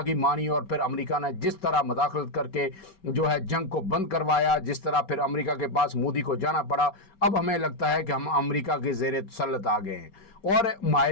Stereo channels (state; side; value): late; right; 5.2 ms